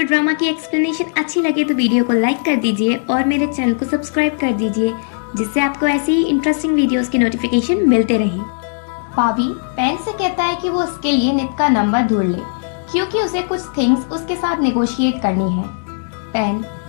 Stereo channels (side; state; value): right; silent; 68 dB below the other